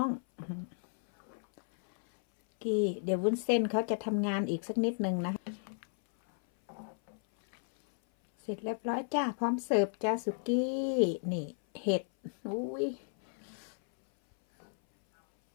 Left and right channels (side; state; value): right; silent; 56 dB below the other